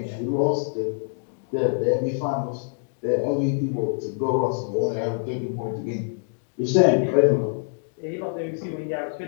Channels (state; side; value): silent; right; digital silence